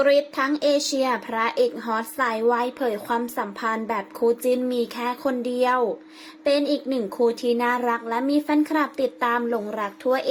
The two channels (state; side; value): identical; both; correlation 1.00